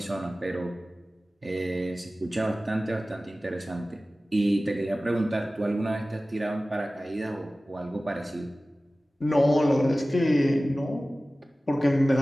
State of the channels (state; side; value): normal; both; correlation 0.96